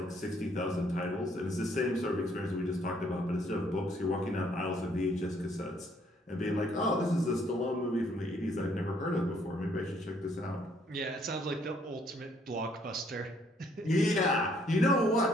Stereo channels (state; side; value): normal; both; correlation 0.66